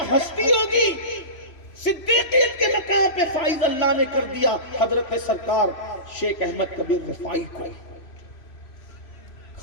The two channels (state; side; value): late; right; 3.0 ms